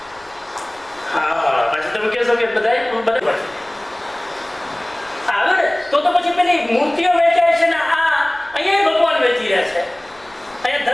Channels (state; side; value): noise; left; rumble, 30 dB below the sound